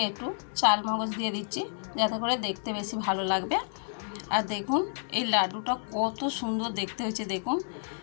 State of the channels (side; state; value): right; silent; 58 dB below the other